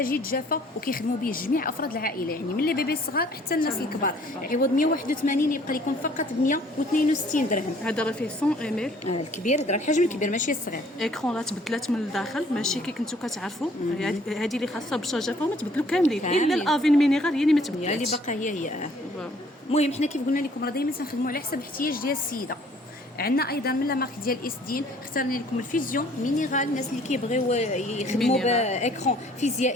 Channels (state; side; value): normal; both; correlation 0.58